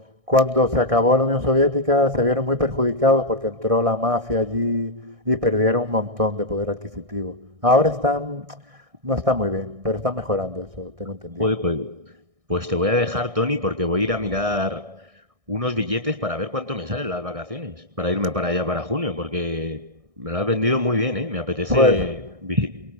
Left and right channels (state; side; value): late; left; 1.6 ms